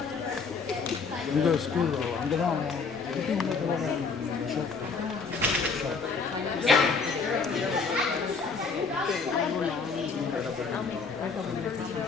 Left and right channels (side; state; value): right; quieter; 4.9 dB